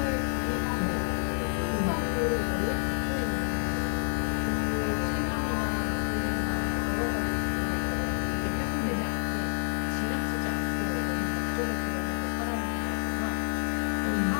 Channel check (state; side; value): silent; right; 58 dB below the other